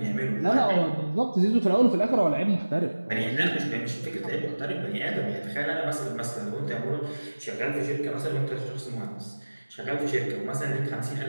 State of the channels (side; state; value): both; inverted; correlation -1.00